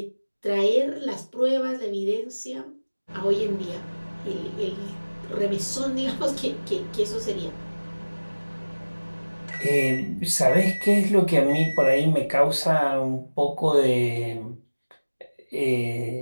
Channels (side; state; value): both; inverted; correlation -1.00